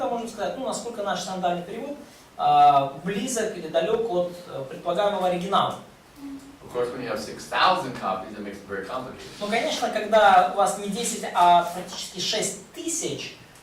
можем сказать, насколько наш синодальный перевод близок или далек от предполагаемого оригинала. Of course, when you have 6,000 copies, it makes it very complicated. Ну, конечно, когда у вас не 10, а практически 6 тысяч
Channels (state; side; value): identical; both; correlation 1.00